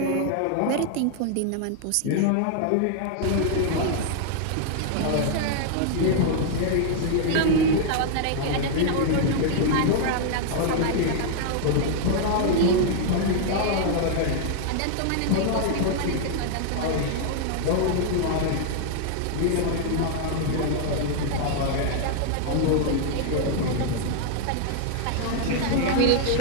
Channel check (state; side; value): different; both; correlation -0.01